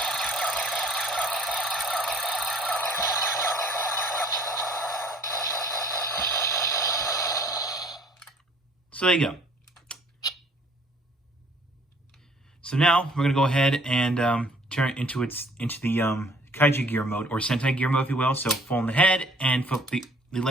so there you go. So now we're gonna go ahead and turn it into the Kaiju gear mode, or Sentai gear mode, if you will. So fold the head and flip the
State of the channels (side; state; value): both; normal; correlation 0.57